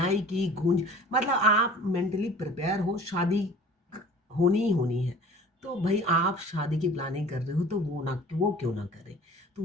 की, गूंज, मतलब आप मेंटली प्रिपेयर हो, शादी होनी ही होनी है। तो भाई आप शादी की प्लानिंग कर रहे हो तो वो क्यों ना करें। तो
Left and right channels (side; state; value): both; normal; correlation 0.45